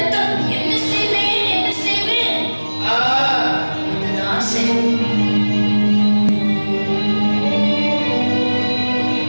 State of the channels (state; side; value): inverted; both; correlation -1.00